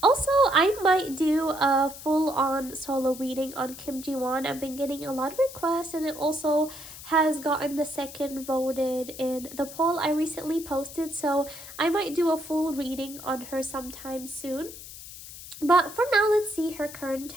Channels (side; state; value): left; noise; hiss, 14 dB below the sound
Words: Also, I might do a full-on solo reading on KimJiwon. I've been getting a lot of requests, and it also has gotten the second voted in the poll I recently posted. So I might do a full reading on her sometime soon. But for now, let's see her current